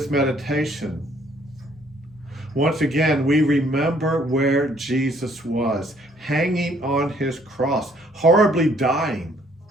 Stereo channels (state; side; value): normal; both; correlation 0.63